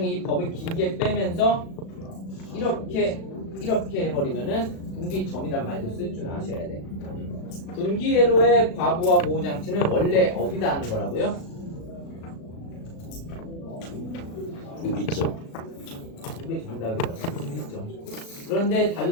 이 법을 길게 빼면서 이렇게 해버리면은 분기점이란 말도 쓸 줄 아셔야 돼. 분기회로의 과부하 보호 장치는 원래 어디다 하는 거라고요? 분기점. 그게 정답이라고. 분기점. 그런데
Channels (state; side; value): late; right; 36 ms